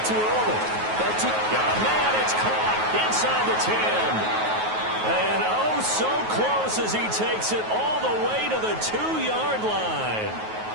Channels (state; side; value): late; left; 9.3 ms